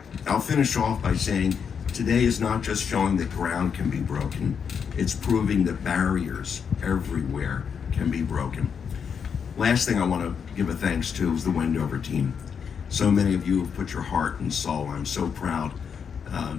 I'll finish off by saying, today is not just showing that ground can be broken, it's proving that barriers everywhere can be broken. Last thing I want to give a thanks to is the Wendover team. So many of you have put your heart and soul. I'm so proud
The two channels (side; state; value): right; quieter; 6.8 dB